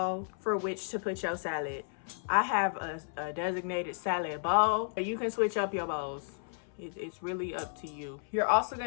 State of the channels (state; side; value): silent; right; 56 dB below the other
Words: for which to put your salad. I have a designated salad bowl. You can switch up your bowls. It's really up to you. You're also